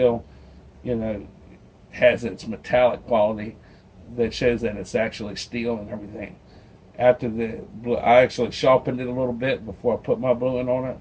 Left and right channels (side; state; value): both; identical; correlation 1.00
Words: you know, has its metallic quality that shows that it's actually steel and everything. After the blue, I actually sharpened it a little bit before I put my bluing on it.